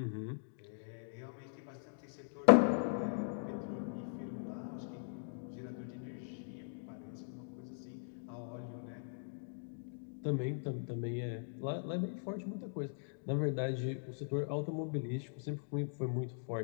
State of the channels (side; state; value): right; silent; digital silence